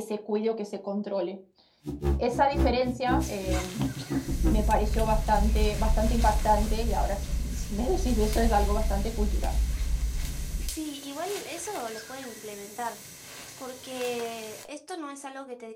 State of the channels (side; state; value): both; identical; correlation 1.00